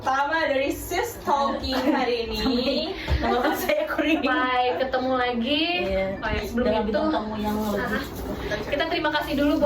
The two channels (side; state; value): both; identical; correlation 1.00